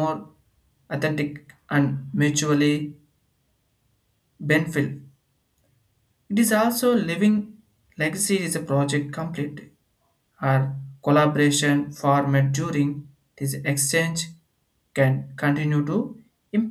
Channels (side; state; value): both; identical; correlation 1.00